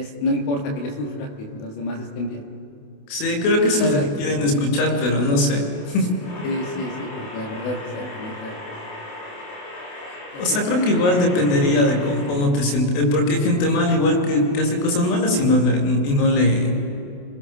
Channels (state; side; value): late; right; 28 ms